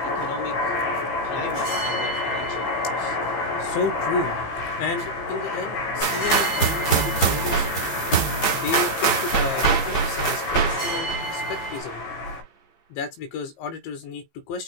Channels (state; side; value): late; right; 15 ms